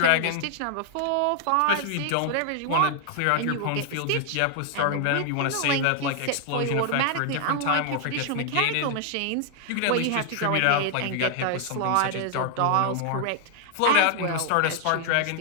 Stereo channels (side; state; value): both; different; correlation 0.00